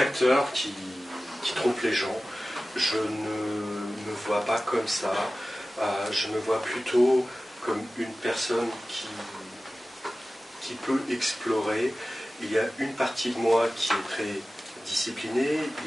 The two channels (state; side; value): normal; both; correlation 0.96